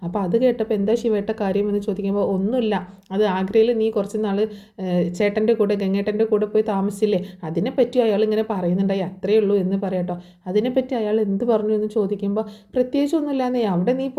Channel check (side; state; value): both; identical; correlation 1.00